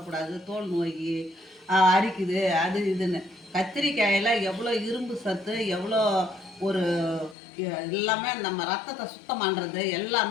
தோல் நோய் அரிக்குது அது இதுன்னு. கத்திரிக்காயில் எவ்வளோ இரும்பு சத்து, எவ்வளோ ஒரு எல்லாமே நம்ம ரத்தத்தை சுத்தம் பண்ணுறது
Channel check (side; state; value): right; drops out; at 7.4 s